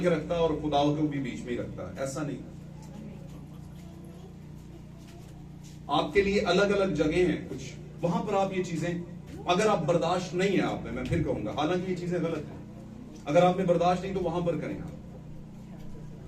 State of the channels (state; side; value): identical; both; correlation 1.00